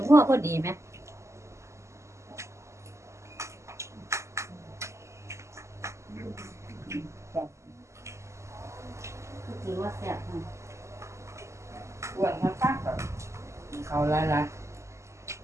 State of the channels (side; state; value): left; late; 0.14 ms